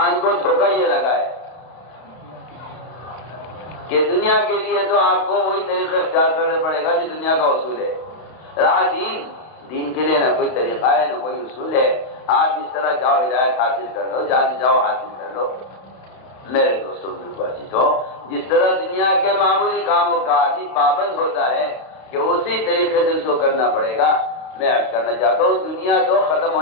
کو دھوکہ یہ لگا ہے کہ دنیا کے لیے تو آپ کو وہی طریقہ اختیار کرنا پڑے گا جو دنیا کا اصول ہے. رہا دین کے لیے نہ کوئی طریقہ ہے نہ کوئی اصول ہے. آپ جس طرح جاؤ ہدایت حاصل کر لو، جہاں جاؤ حاصل کر لو. میرے دوستوں بھائیوں، جس طرح دنیا کے معمولی کاموں کا آدمی پابند ہوتا ہے کہ اسی طریقے سے اس کو کرنا پڑے گا. میں عرض کرنا چاہتا ہوں دنیا تو ختم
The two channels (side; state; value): right; late; 31 ms